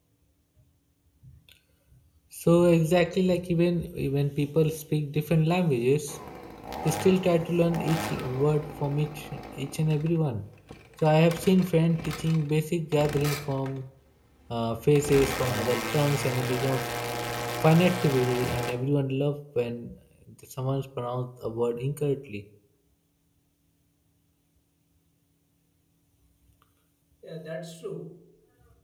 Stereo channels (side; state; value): both; identical; correlation 1.00